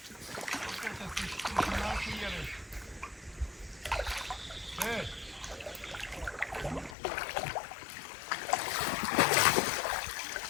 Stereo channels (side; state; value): right; drops out; at 7.0 s